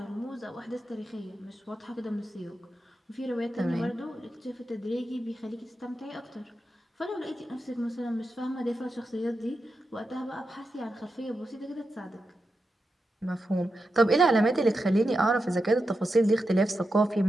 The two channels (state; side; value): normal; both; correlation 0.88